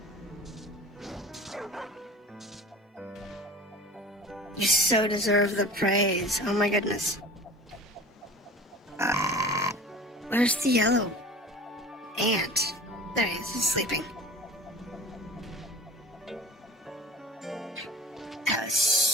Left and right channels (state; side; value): normal; both; correlation 0.40